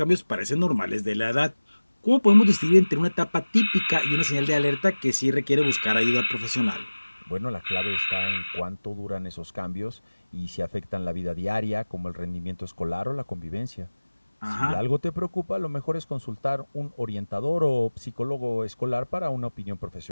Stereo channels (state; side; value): inverted; both; correlation -1.00